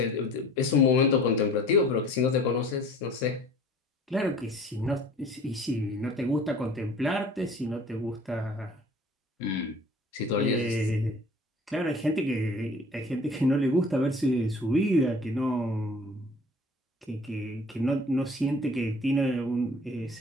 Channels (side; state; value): both; normal; correlation 0.48